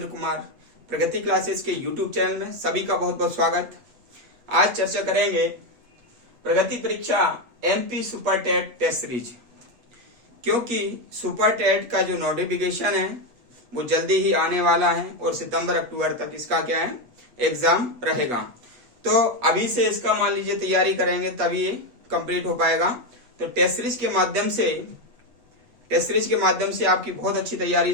कुमार प्रगति क्लासेस के YouTube चैनल में सभी का बहुत बहुत स्वागत। आज चर्चा करेंगे प्रगति परीक्षा MP super TET test series, क्योंकि सुपर टेट का जो नोटिफिकेशन है वो जल्दी ही आने वाला है और सितंबर अक्टूबर तक इसका क्या है एग्जाम रहेगा। तो अभी से इसका मान लीजिए तैयारी करेंगे तभी ये कंप्लीट हो पाएगा। तो टेस्ट सीरीज के माध्यम से आपकी बहुत अच्छी तैयारी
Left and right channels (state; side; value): late; left; 8.2 ms